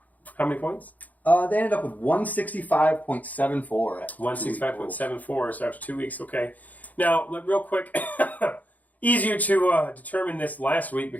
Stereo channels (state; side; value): late; right; 0.078 ms